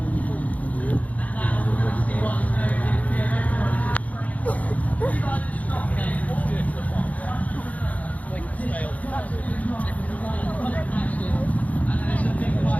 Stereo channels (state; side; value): late; right; 0.071 ms